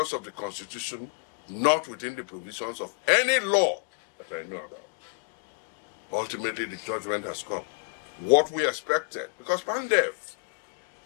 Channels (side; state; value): right; quieter; 39.9 dB